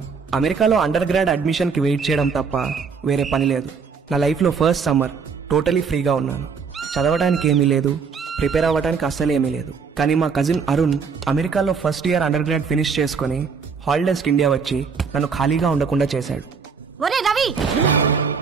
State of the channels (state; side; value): quieter; left; 5.7 dB